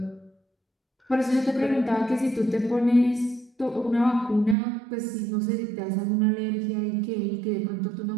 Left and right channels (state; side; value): drops out; left; at 4.5 s